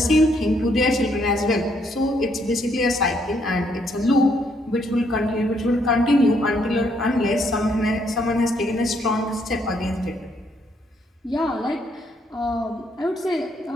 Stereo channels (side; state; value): both; normal; correlation 0.71